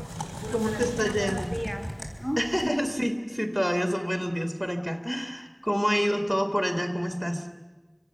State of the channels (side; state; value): both; identical; correlation 1.00